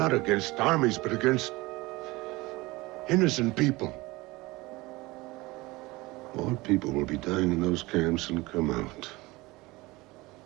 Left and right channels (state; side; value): quieter; left; 21.7 dB